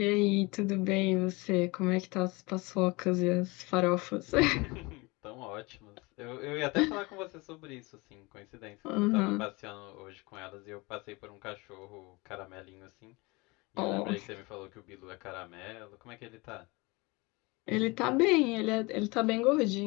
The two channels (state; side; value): quieter; right; 24.9 dB